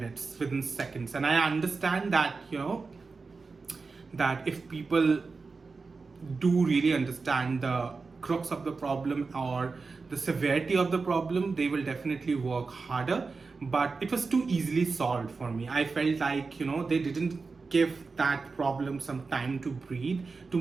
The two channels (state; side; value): quieter; left; 4.3 dB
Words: within seconds. And I understand that, that if people do really understand the crux of the problem or the severity of the problem, they will definitely work harder. But it was too easily solved for me. I felt like they didn't give that problem some time to breathe,